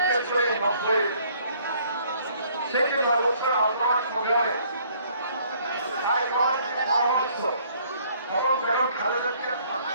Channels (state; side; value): inverted; both; correlation -0.62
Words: করে 90 সেই যে 9 বছর আন্দোলন সংগ্রামে তাই পরামর্শ এবং কেন খালেদা জিয়ার